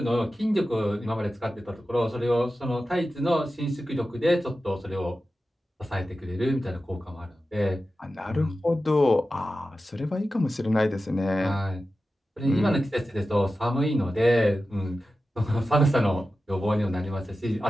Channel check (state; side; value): normal; both; correlation 0.93